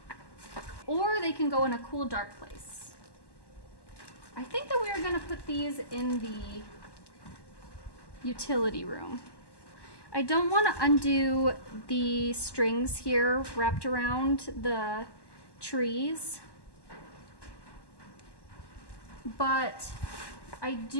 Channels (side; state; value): right; late; 1.1 ms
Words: Or they can go in a cool, dark place. I think that we are going to put these in the utility room. I don't want to undo the strings here wrapped around the trees, but I